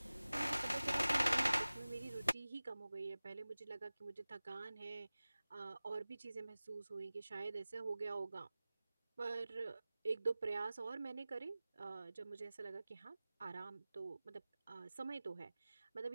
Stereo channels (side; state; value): both; inverted; correlation -0.98